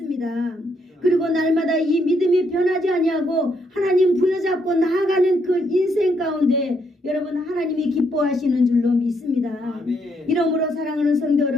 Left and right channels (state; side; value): normal; both; correlation 0.75